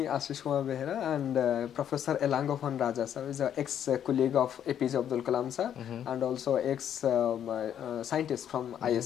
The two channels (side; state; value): right; quieter; 9.6 dB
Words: Ashish Kumar Behera, and Professor Elangovan Raja sir is an ex-colleague of APJ Abdul Kalam sir, and also ex-scientist from